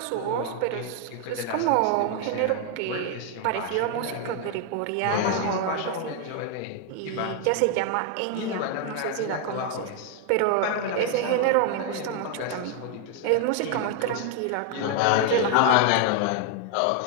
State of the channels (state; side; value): different; both; correlation 0.00